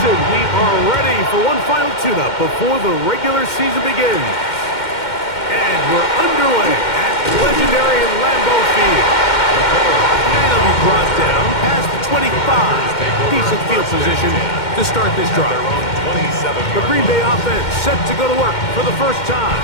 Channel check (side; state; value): right; late; 2.1 ms